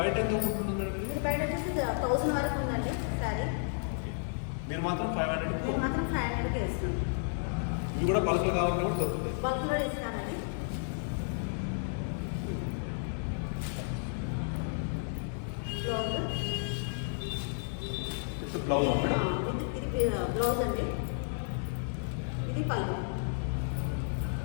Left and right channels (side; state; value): right; silent; 56 dB below the other